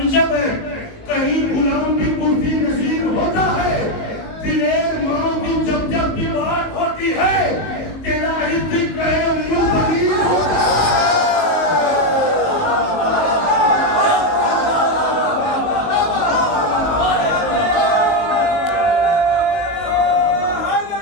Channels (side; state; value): right; late; 19 ms